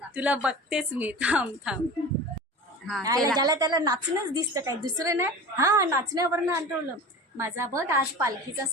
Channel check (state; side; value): normal; both; correlation 0.34